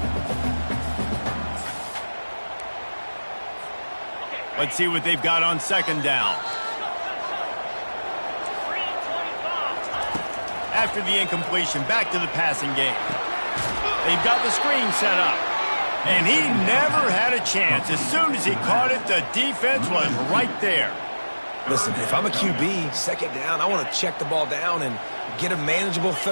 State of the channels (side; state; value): both; inverted; correlation -1.00